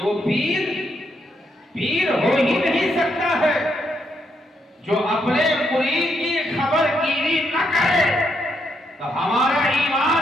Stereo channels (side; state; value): both; normal; correlation 0.78